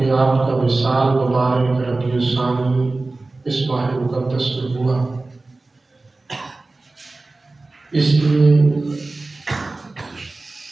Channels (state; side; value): quieter; left; 3.3 dB